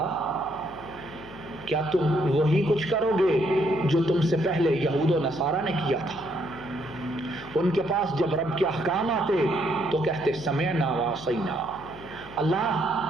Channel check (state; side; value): noise; left; hum, 18 dB below the sound